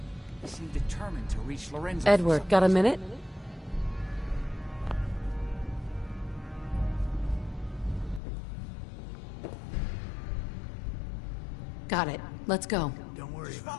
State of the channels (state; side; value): drops out; right; at 8.2 s